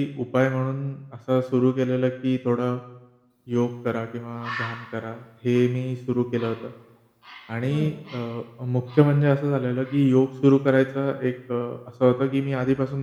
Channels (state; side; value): identical; both; correlation 1.00